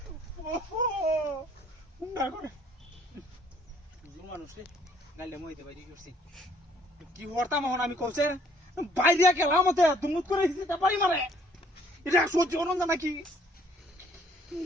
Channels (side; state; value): both; normal; correlation 0.62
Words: ওহো উন্ডা করে হুজুর মানুষ রে গালে মইতে বাইরে করছি কি হরতাম এখন আমি কইছে বাইরে গেলাম মতে দুমুত করে দিছি তা বাড়ি মারে এটা সহ্য হন না নাকি